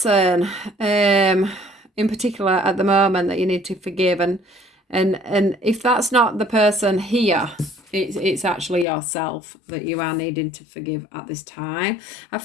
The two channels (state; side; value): drops out; right; at 8.8 s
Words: in particular at the moment that you need to forgive, and if that's not the person here, it's actually yourself that you are needing to forgive at this time. I